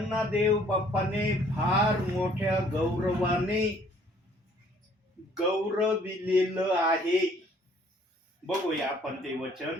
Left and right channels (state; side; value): normal; both; correlation 0.60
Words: देव बाप्पाने फार मोठ्या गौरवाने गौरविलेलं आहे. बघूया आपण ते